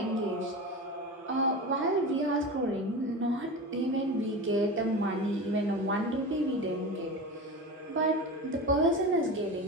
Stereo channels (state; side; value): normal; both; correlation 0.27